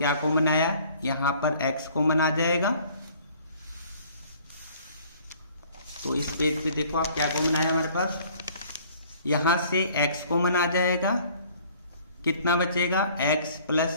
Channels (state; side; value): inverted; both; correlation -0.55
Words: कॉमन आया, यहां पर x कॉमन आ जाएगा। तो इस पेज पे देखो आप क्या कॉमन आया हमारे पास, यहां से x कॉमन आ जाएगा, कितना बचेगा, x प्लस